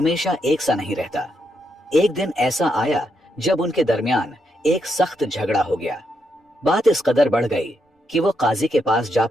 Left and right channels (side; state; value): both; normal; correlation 0.80